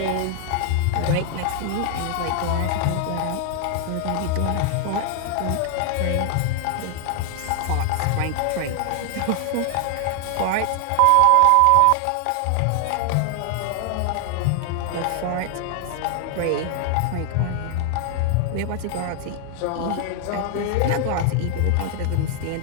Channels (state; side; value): different; both; correlation 0.00